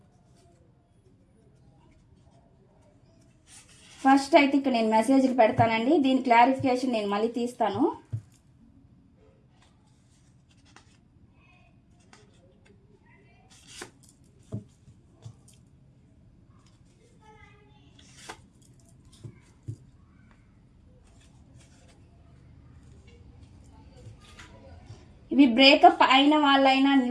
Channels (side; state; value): both; identical; correlation 1.00